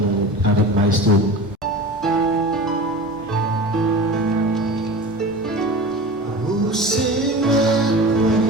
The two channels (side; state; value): both; normal; correlation 0.33